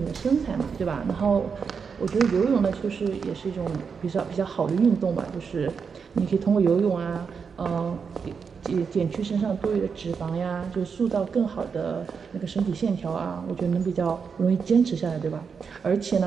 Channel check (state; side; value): quieter; left; 5.9 dB